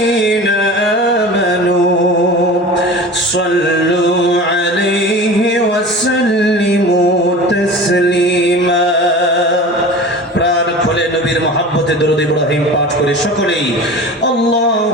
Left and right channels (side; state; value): both; normal; correlation 0.35